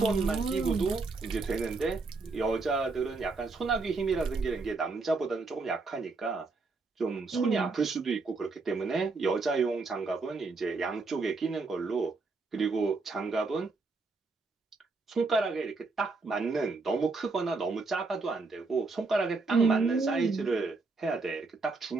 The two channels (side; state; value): left; quieter; 3.9 dB